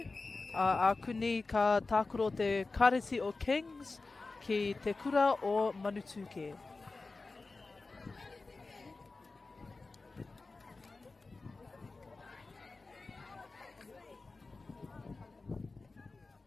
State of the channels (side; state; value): right; quieter; 3.7 dB